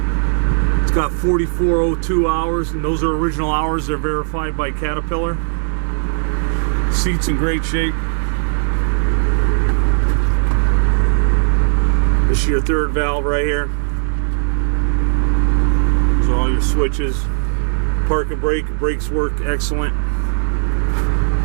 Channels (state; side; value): silent; left; digital silence